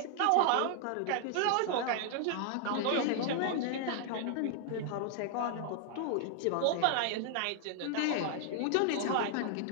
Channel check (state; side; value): different; both; correlation 0.00